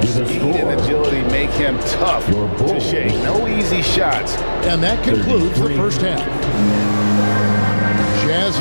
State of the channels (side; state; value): both; inverted; correlation -1.00